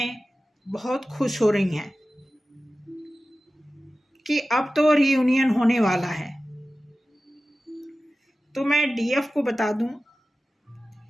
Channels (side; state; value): both; normal; correlation 0.95